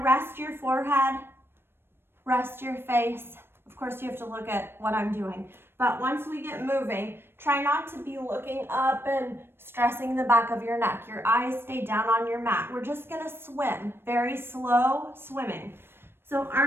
rest your forehead, rest your face. Of course, you have to look at what I'm doing. But once we get moving, try not to be looking up and stressing the back of your neck. Your eyes stay down on your mat. We're just gonna swim, very slow swimming. So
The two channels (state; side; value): late; left; 0.11 ms